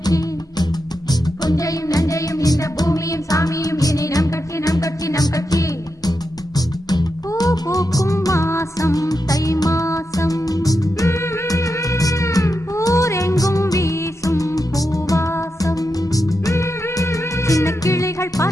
புஞ்சையும் நஞ்சையும் இந்த பூமியும் சாமியும் இனி நம் கட்சி நம் கட்சி நம் கட்சி பூ பூக்கும் மாசம் தை மாசம் ஊரெங்கும் வீசும் பூவாசம் சின்ன கிளிகள்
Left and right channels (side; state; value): both; normal; correlation 0.87